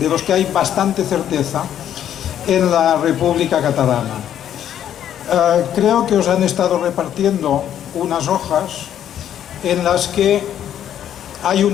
los que hay bastante certeza, en la República Catalana. Creo que os han estado repartiendo unas hojas en las que hay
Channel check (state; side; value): quieter; right; 10.3 dB